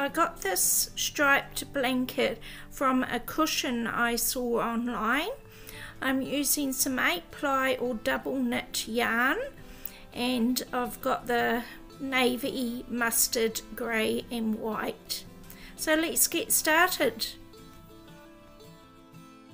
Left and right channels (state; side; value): identical; both; correlation 1.00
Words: got this striped blanket from a cushion I saw online. I'm using some 8-ply or double knit yarn, and I've got the navy, mustard, grey and white. So let's get started.